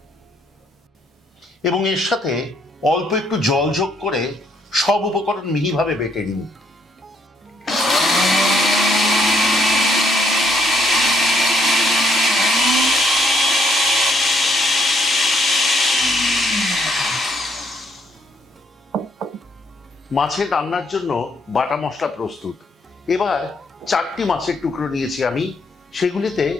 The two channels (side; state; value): both; normal; correlation 0.70